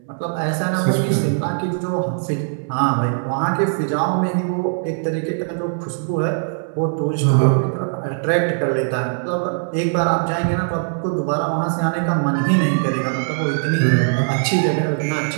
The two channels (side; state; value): left; silent; 65 dB below the other